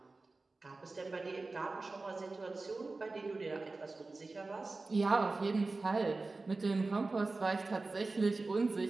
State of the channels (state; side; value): quieter; left; 3.5 dB